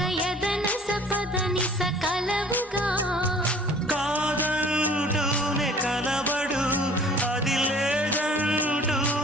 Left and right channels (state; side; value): normal; both; correlation 0.50